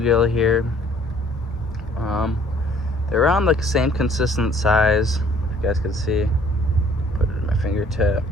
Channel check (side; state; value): both; normal; correlation 0.58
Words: here. They're around the same consistent size, if you guys can see. Put it in my fingertip.